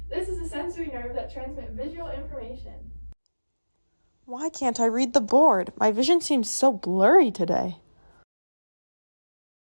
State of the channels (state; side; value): inverted; both; correlation -1.00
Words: This is a sensory nerve that transmits visual information. Why can't I read the board? My vision seems so blurry today.